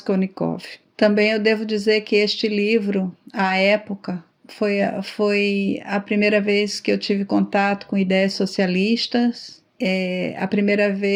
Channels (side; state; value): both; identical; correlation 1.00